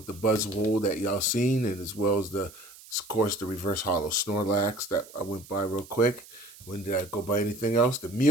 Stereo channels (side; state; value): right; noise; hiss, 20 dB below the sound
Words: the Buzzwole that y'all seen, and as well as of course, the Reverse Hollow Snorlax that I went by real quick. When did I go by anything else? The